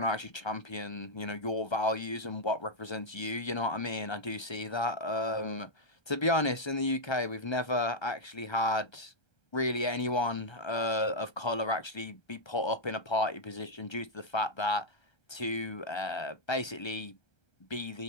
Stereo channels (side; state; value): right; late; 1.3 ms